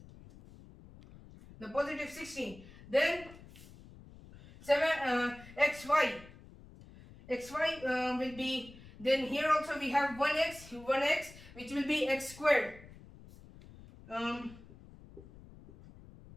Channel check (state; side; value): noise; left; rumble, 19 dB below the sound